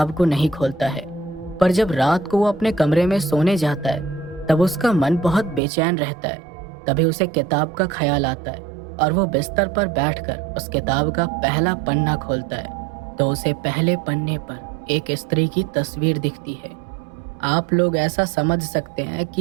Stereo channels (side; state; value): left; drops out; at 5.6 s